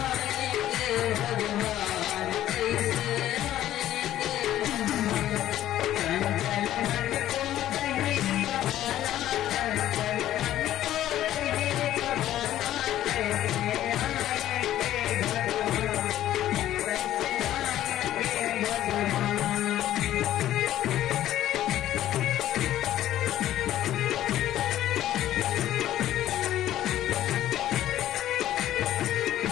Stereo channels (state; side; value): quieter; right; 12.9 dB